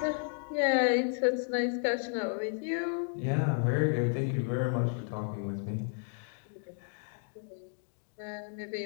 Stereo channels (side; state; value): right; silent; 56 dB below the other